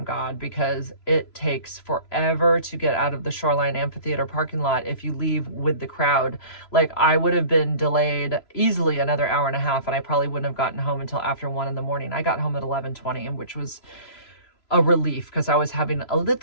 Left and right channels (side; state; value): right; late; 3.0 ms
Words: God, because it takes forever to get out of the Shoreline Amphitheater parking lot if you leave with the crowd. Like, I would have been delayed easily another hour and a half, and I probably wouldn't have gotten home until after 1 in the morning. I got home at 11:20, which was a relief because I was having a